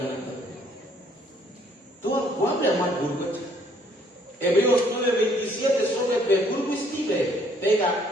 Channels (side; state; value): both; normal; correlation 0.63